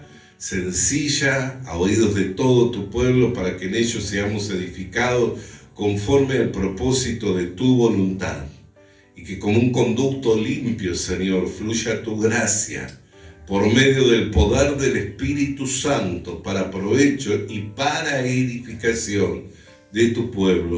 sencilla, a oídos de todo tu pueblo, para que en ellos seamos edificados conforme al propósito de tu voluntad. Y que como un conducto limpio, Señor, fluya tu gracia por medio del poder del Espíritu Santo para provecho y para edificación de tu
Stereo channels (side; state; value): both; identical; correlation 1.00